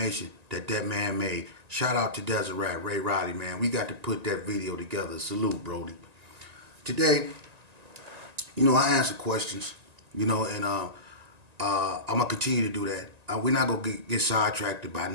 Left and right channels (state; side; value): late; left; 1.9 ms